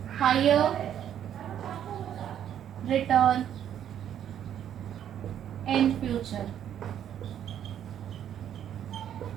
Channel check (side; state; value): left; quieter; 10.0 dB